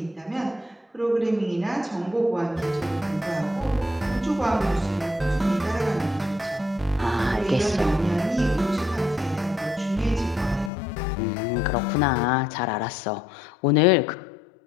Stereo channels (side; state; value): right; drops out; at 10.7 s